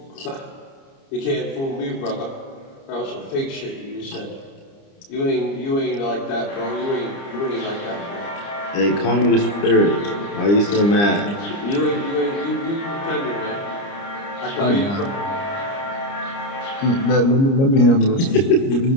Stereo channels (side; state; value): right; late; 30 ms